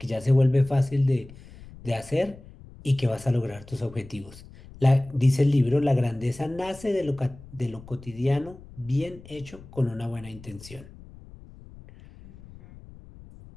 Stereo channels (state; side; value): noise; left; rumble, 19 dB below the sound